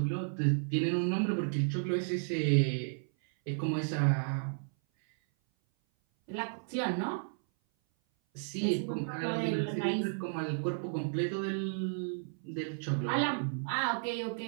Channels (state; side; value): silent; left; 56 dB below the other